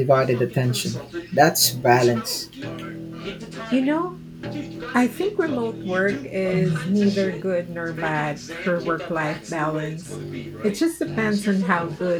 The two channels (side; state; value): both; identical; correlation 1.00